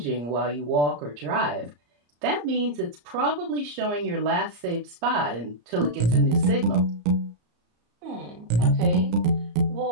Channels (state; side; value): late; left; 34 ms